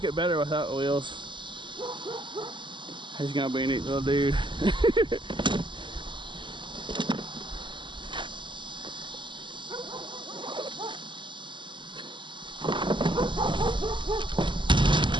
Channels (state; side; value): late; left; 0.23 ms